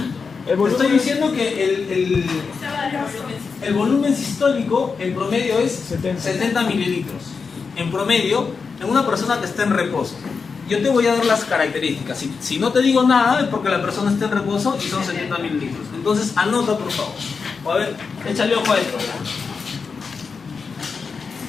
Estoy diciendo que el volumen sistólico en promedio es 70 mililitros. En promedio, en una persona que está en reposo. Yo te voy a dar las características. Si no te digo nada es porque la persona está en reposo y son 70 mililitros. Entonces anota, por favor. O a ver, échale ojo a esto.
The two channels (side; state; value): right; quieter; 5.2 dB